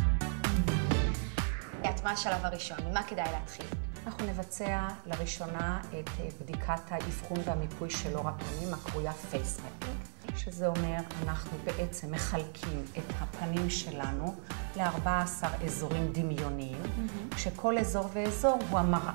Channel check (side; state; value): left; silent; digital silence